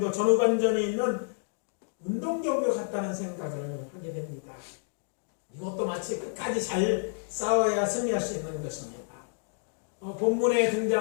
전후반전에 있는 운동경기 같다는 생각을 하게 됩니다. 이것도 마치 끝까지 잘 싸워야 승리할 수 있는 것입니다. 본문에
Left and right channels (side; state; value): right; silent; digital silence